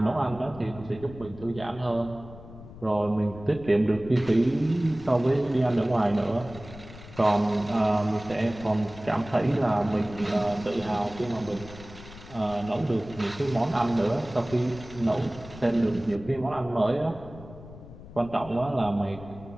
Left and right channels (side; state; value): left; noise; rumble, 16 dB below the sound